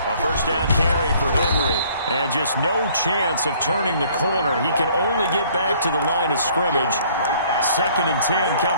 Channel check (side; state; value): both; inverted; correlation -0.59